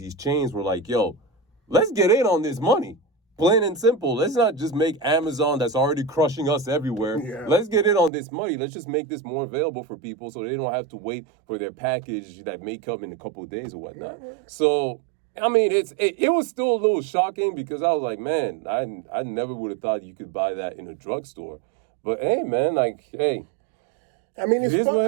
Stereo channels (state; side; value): drops out; left; at 8.1 s